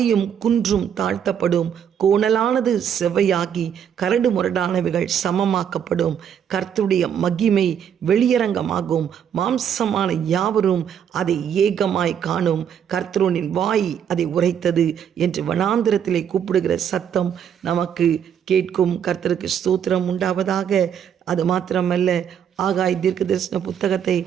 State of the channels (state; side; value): quieter; left; 8.5 dB